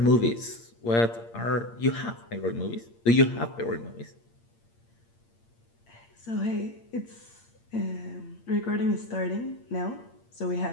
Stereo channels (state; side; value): late; right; 8.7 ms